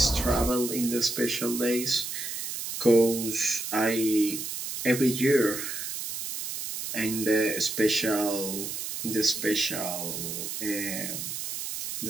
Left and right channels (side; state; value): right; noise; hiss, 5 dB below the sound